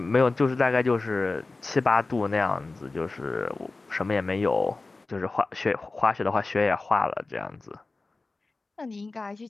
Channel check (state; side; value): quieter; right; 3.5 dB